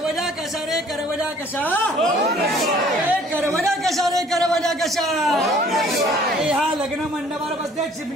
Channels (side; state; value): both; normal; correlation 0.56